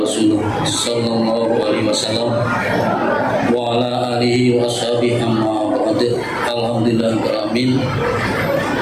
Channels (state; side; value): identical; both; correlation 1.00